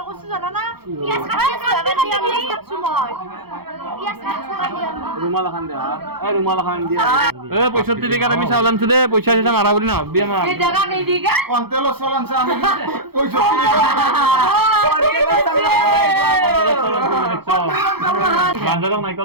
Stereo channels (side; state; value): left; late; 0.96 ms